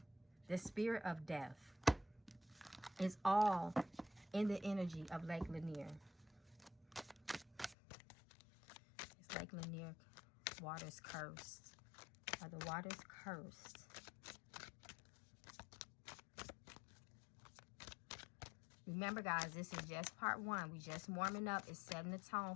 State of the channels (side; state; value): right; drops out; at 7.8 s